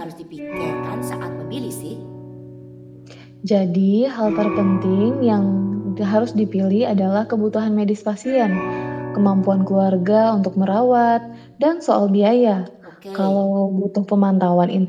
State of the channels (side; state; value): both; identical; correlation 1.00